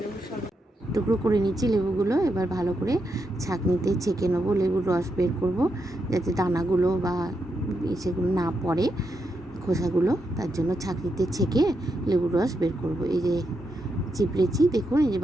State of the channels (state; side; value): normal; both; correlation 0.83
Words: শরবত। টুকরো করে নিচ্ছি লেবুগুলো, এবার ভালো করে ছাঁকনিতে ছেঁকে নেবো। লেবুর রস বের করব যাতে দানাগুলো বা সেগুলো না পড়ে, খোসাগুলো। তার জন্য ছাঁকনিতে ছেঁকে লেবুর রস বের করব। এই যে চিপড়েছি, দেখুন এই যে